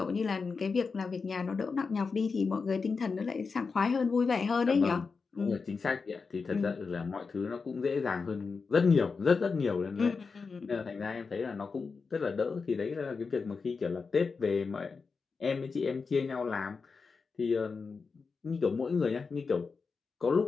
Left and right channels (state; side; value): quieter; right; 4.8 dB